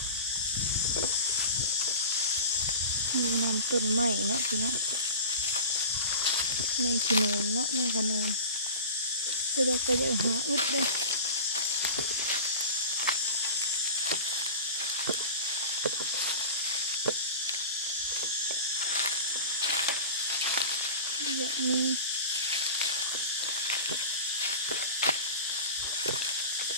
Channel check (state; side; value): inverted; both; correlation -0.34